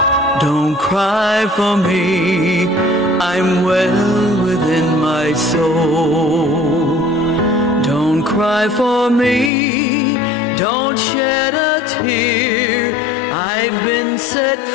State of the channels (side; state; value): right; drops out; at 9.5 s